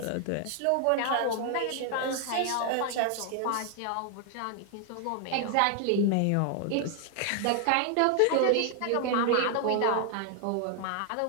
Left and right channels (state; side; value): different; both; correlation 0.00